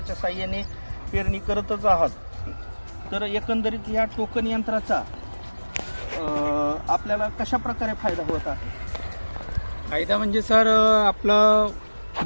साहाय्याने पेरणी करतच आहात. तर एकंदरीत या टोकन यंत्राचा आपल्याला कशा प्रकारे फायदा होत आहे? फायदा म्हणजे सर आपलं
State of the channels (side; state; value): both; inverted; correlation -1.00